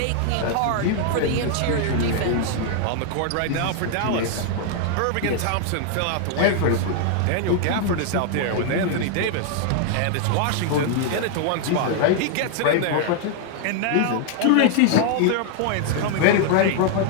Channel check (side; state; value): both; different; correlation 0.00